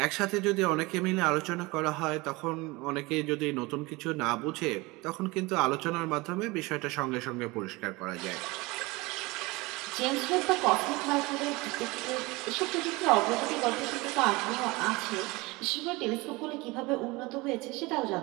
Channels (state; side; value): quieter; left; 23.3 dB